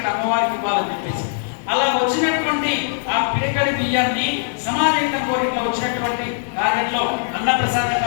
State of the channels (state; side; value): silent; right; digital silence